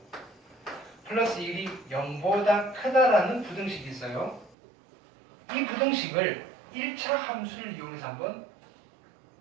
플러스 1이 0보다 크다라는 부등식이 있어요. 이 부등식을 1차 함수를 이용해서 한번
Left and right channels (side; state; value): left; drops out; at 4.5 s